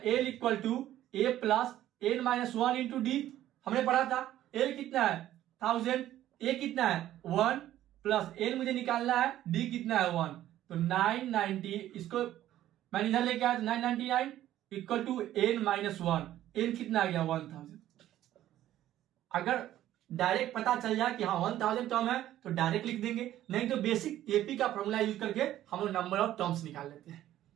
= a plus n - 1 into D. हमने पढ़ा था एल कितना है? 1000, ए कितना है? 1 प्लस एन मुझे निकालना है, डी कितना है? 1। तो 990, इसको मैंने इधर लेके आया तो 999 = n - 1। एन कितना आ गया? 1000। अगर डायरेक्ट पता चल जाए कि हाँ 1000 टर्म है तो डायरेक्ट लिख देंगे, नहीं तो बेसिक एपी का फॉर्मूला यूज करके हम लोग नंबर ऑफ टर्म्स निकाल लेते हैं,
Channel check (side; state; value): left; quieter; 13.1 dB